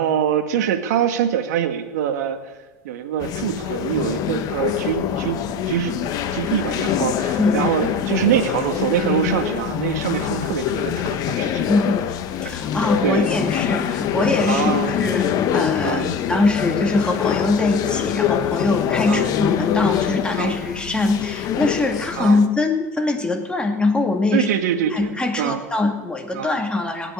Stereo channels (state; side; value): normal; both; correlation 0.35